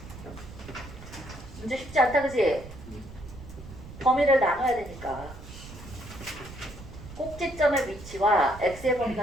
문제 쉽지 않다, 그치? 범위를 나눠야 되니까. 꼭지점의 위치와 x의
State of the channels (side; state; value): right; noise; rumble, 15 dB below the sound